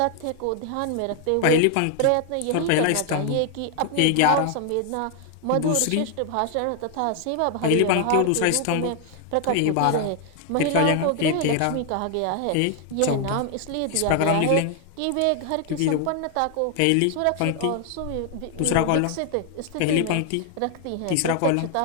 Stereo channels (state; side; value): different; both; correlation 0.00